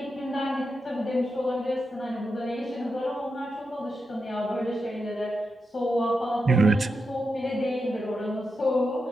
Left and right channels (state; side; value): normal; both; correlation 0.88